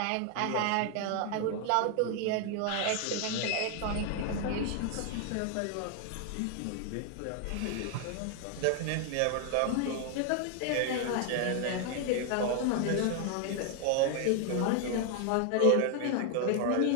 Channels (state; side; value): different; both; correlation 0.00